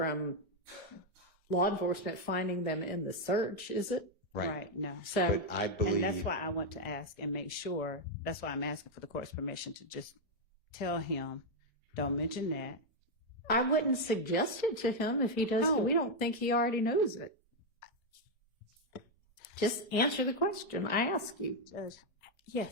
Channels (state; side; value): normal; both; correlation 0.01